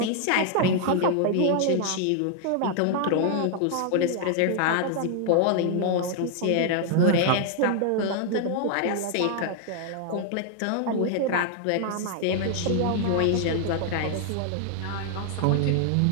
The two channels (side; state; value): both; different; correlation 0.00